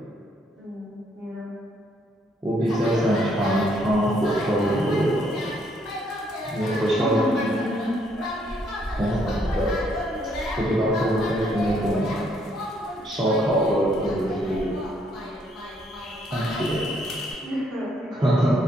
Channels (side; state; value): both; normal; correlation 0.70